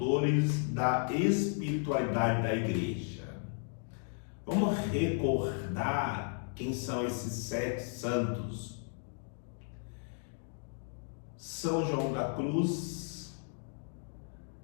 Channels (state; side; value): silent; right; 55 dB below the other